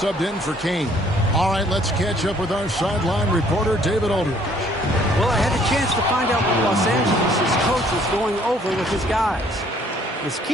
in for Kane. All right, let's catch up with our sideline reporter, David Aldridge. Well, I had a chance to find out what Los Angeles' coach was going over with his guys. His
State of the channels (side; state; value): both; normal; correlation 0.61